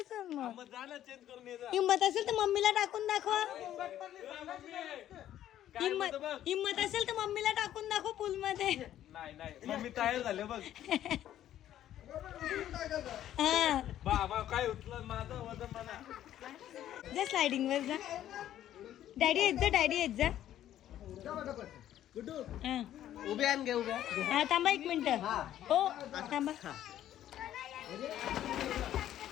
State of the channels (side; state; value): right; quieter; 11.9 dB